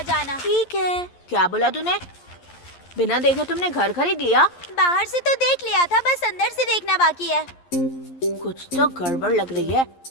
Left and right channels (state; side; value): late; right; 11 ms